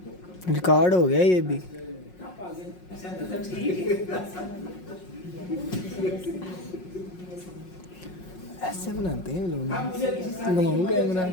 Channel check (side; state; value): right; late; 5.5 ms